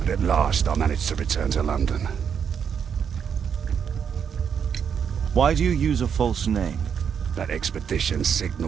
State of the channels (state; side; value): quieter; left; 7.4 dB